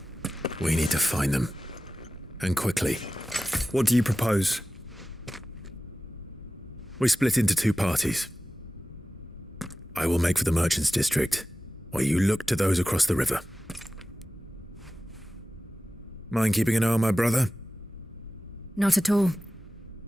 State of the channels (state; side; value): normal; both; correlation 0.95